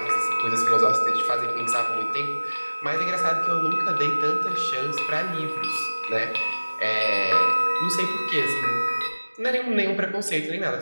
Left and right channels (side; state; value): both; inverted; correlation -1.00